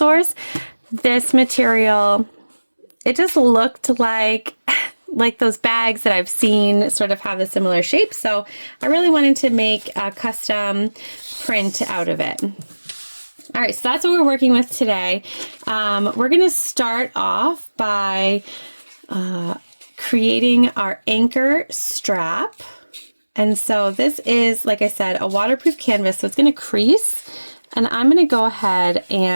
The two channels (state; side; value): inverted; both; correlation -1.00